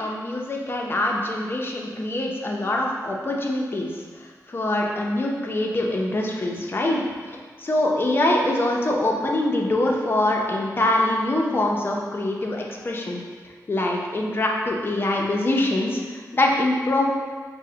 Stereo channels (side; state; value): both; normal; correlation 0.77